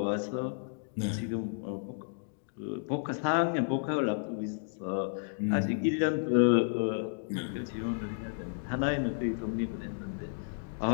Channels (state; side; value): silent; right; digital silence